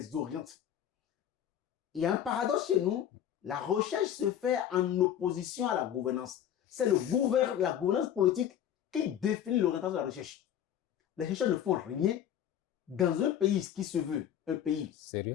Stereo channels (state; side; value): quieter; right; 10.2 dB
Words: oriente. Il y a un paradoxe chez nous. La recherche se fait en opposition à la gouvernance. C'est la gouvernance politique qui définit l'orientation de la recherche. Les chercheurs ne font rien dans un pays qui se veut un pays